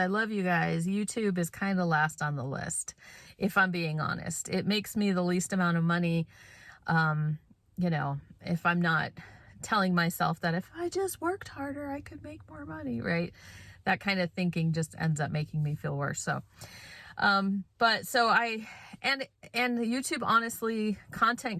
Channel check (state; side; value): identical; both; correlation 1.00